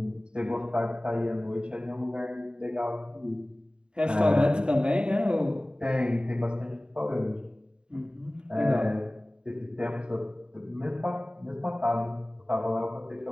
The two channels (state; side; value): late; left; 0.050 ms